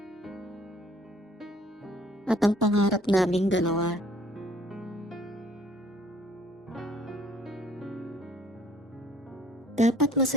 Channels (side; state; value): both; normal; correlation 0.57